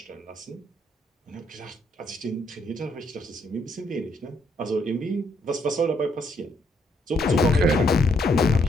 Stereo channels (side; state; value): both; normal; correlation 0.72